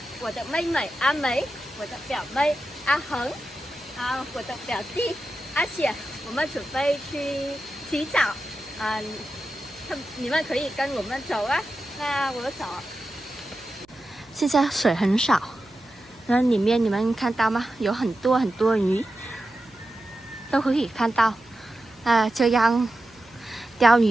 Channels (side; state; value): right; noise; hum, 30 dB below the sound